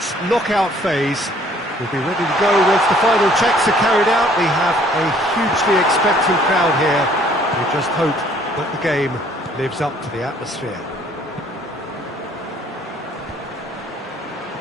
knockout phase. We'll be ready to go once the final checks are carried out. We have a hugely expectant crowd here. We just hope that the game lives up to the atmosphere.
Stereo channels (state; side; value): normal; both; correlation 0.59